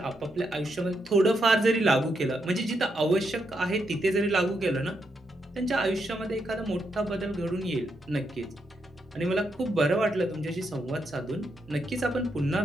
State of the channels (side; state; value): both; normal; correlation 0.81